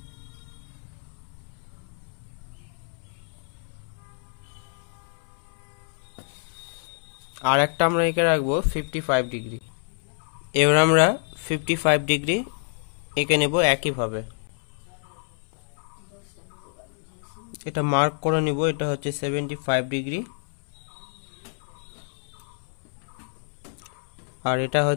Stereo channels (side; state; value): right; silent; 60 dB below the other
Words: আর একটা আমরা এঁকে রাখবো 55 ডিগ্রি। এবার আমরা 55 ডিগ্রি এঁকে নেব একইভাবে। এটা মার্ক করে নিব, এটা হচ্ছে 75 ডিগ্রি আর এটা